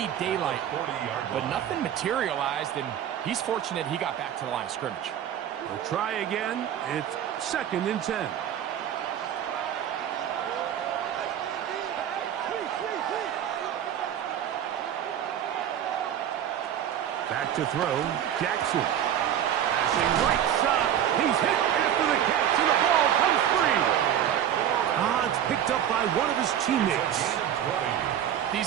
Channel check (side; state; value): left; quieter; 10.2 dB